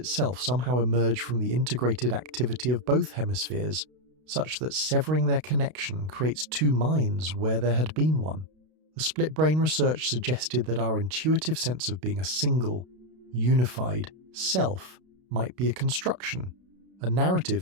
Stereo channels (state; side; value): late; left; 32 ms